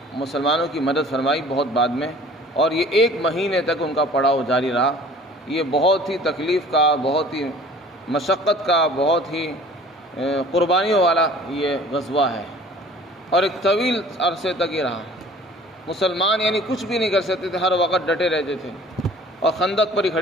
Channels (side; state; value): both; normal; correlation 0.48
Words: مسلمانوں کی مدد فرمائی بہت بعد میں، اور یہ 1 مہینے تک ان کا پڑاؤ جاری رہا۔ یہ بہت ہی تکلیف کا، بہت ہی مشقت کا، بہت ہی قربانیوں والا یہ غزوہ ہے، اور ایک طویل عرصے تک یہ رہا۔ مسلمان یعنی کچھ بھی نہیں کر سکتے تھے، ہر وقت ڈٹے رہتے تھے اور خندق پر ہی